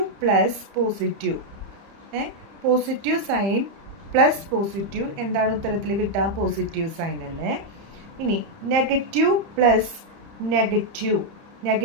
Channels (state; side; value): late; left; 30 ms